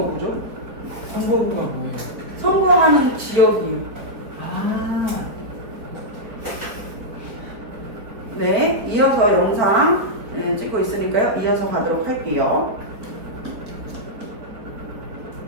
선거구가 뭐예요? 선거하는 지역이요. 아, 네, 이어서 영상 찍고 있으니까요. 이어서 가도록 할게요.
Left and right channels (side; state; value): left; late; 4.1 ms